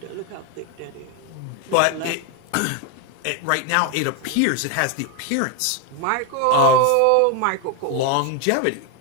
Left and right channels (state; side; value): different; both; correlation 0.01